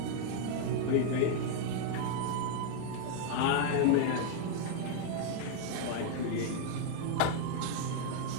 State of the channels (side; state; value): both; different; correlation 0.00